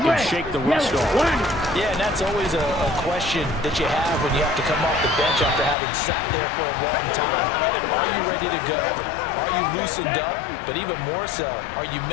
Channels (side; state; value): right; drops out; at 5.8 s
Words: shake the rust off. Yeah, and that's always a question that you have when you have to come off the bench after having sat there for a long time. Are you ready to go? Are you loosened up? But even more so, are you